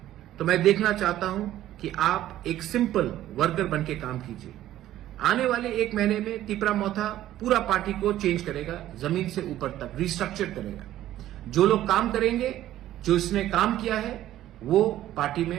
तो मैं देखना चाहता हूं कि आप एक सिंपल वर्कर बन के काम कीजिए। आने वाले एक महीने में तिपरा मोथा पूरा पार्टी को चेंज करेगा, जमीन से ऊपर तक रिस्ट्रक्चर करेगा। जो लोग काम करेंगे, जो इसने काम किया है, वो पार्टी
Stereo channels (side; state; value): left; quieter; 13.3 dB